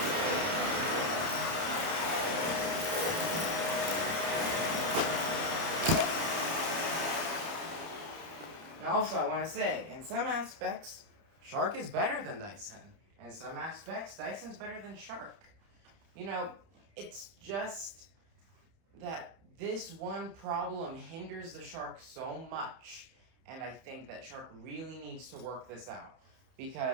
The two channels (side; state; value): left; late; 30 ms